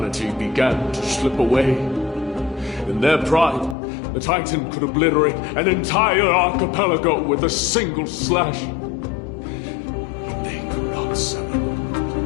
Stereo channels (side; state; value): right; drops out; at 3.8 s